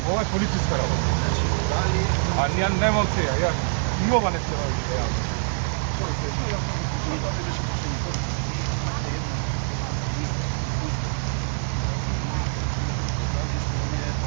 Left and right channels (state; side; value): silent; left; 61 dB below the other